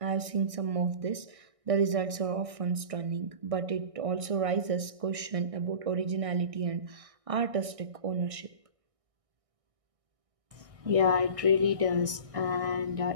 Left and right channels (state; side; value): late; left; 1.6 ms